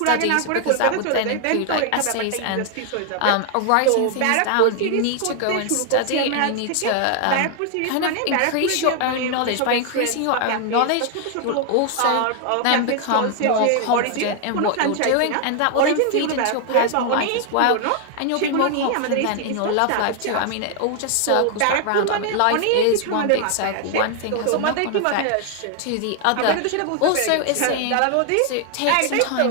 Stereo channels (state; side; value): different; both; correlation 0.00